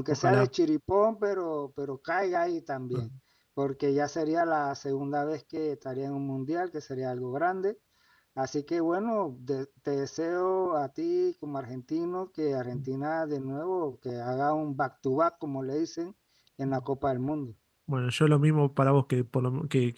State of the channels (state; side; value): identical; both; correlation 1.00